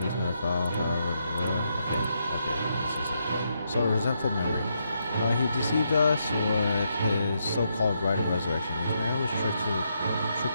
never fell. Okay, this is it. So, a resentful memory. He deceived us with his so-called right of resurrection. This man was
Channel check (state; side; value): inverted; both; correlation -0.80